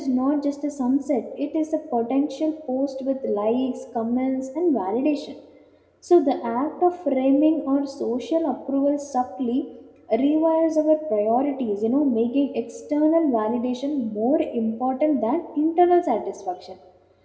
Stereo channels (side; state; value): both; identical; correlation 1.00